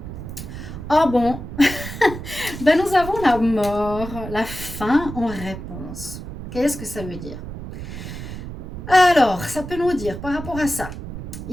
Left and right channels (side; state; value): right; noise; rumble, 9 dB below the sound